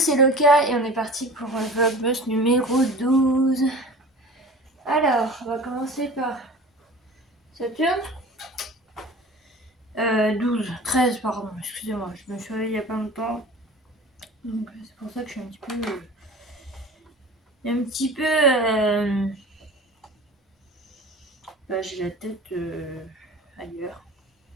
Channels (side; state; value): both; normal; correlation 0.39